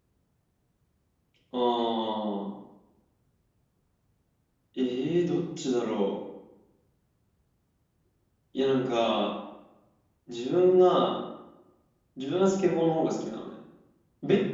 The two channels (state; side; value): identical; both; correlation 1.00